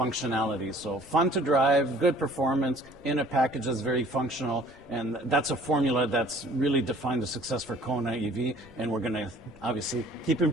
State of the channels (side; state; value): right; noise; rumble, 29 dB below the sound